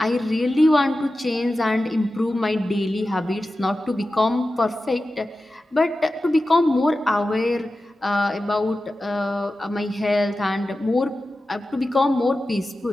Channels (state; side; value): normal; both; correlation 0.94